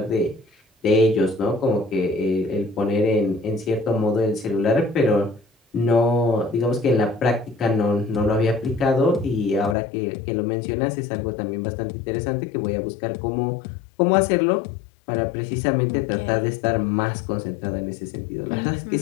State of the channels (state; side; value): drops out; right; at 9.8 s